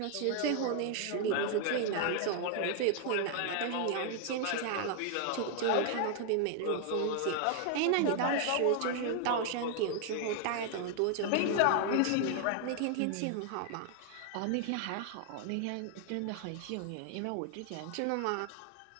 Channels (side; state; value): both; different; correlation 0.00